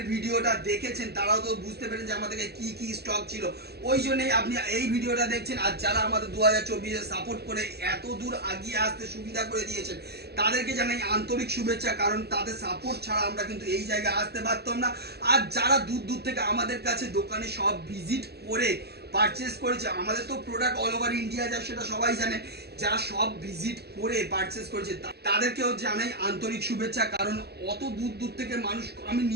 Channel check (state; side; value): late; left; 0.47 ms